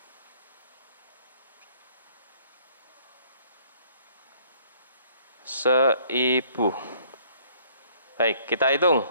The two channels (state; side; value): inverted; both; correlation -0.60